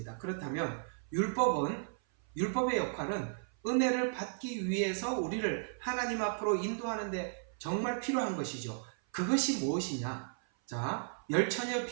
그렇다면 율법의 역할은 은혜를 받기 위해서 우리를 하나님 앞으로 인도하는데 정말 필요한 것이죠. 그것이 무엇이냐? 자, 열처녀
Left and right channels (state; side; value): silent; left; 55 dB below the other